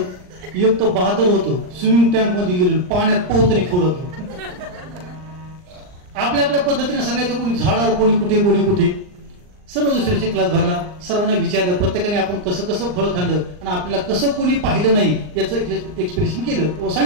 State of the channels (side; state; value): left; late; 39 ms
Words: एक तर बहादर होतो, स्विमिंग टँक मध्ये गेले, पाण्यात पोहतने खाऊ लागलं. आपल्या आपल्या पद्धतीने सांगायचं, कोणी झाडावर, कोणी कुठे, कोणी कुठे. सर्व दुसऱ्याचे क्लास भरला, सर्वांना विचारलं, प्रत्येकाने आपण कसं कसं फळ खाल्लं आणि आपल्याला कसं कोणी पाहिलं नाही याचं एक्सप्रेशन केलं.